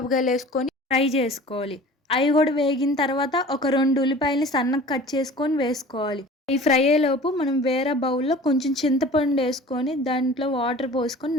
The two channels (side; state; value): both; normal; correlation 0.43